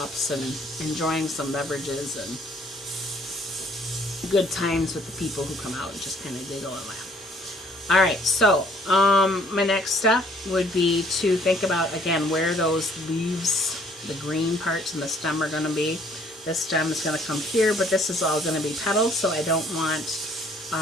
and enjoying some beverages and good times with the people who come out and just kind of giggle and laugh. All right, so my next step would be to think about, again, where those leaves, the green parts and the stem are going to be. This stem is going to come here, but this is all going to be petals, so I don't want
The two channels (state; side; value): normal; both; correlation 0.61